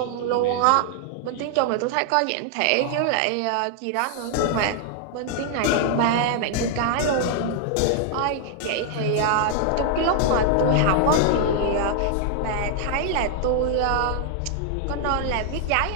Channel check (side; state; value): both; different; correlation 0.00